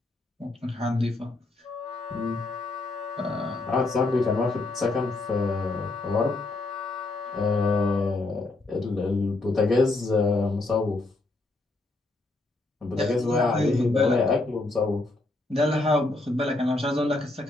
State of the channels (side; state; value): right; quieter; 3.0 dB